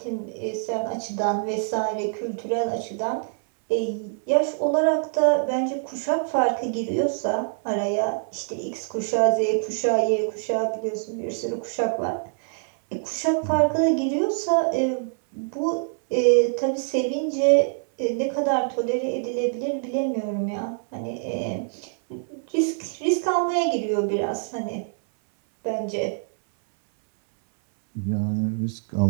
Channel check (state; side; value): silent; left; 62 dB below the other